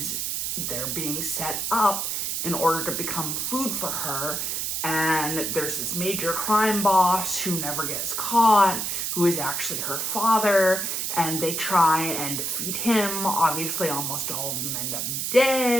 they're being set up in order to become food for her. And there's this major crime boss who never gets caught, who is actually her father, and they try and defeat him. Obviously, almost all of them end up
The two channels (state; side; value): noise; right; hiss, 1 dB below the sound